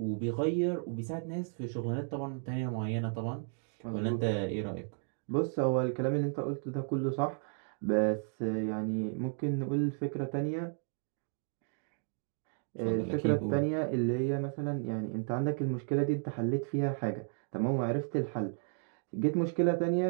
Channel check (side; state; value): left; silent; 55 dB below the other